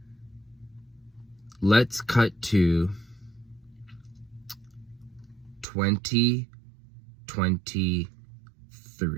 Let's cut to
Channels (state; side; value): drops out; left; at 5.7 s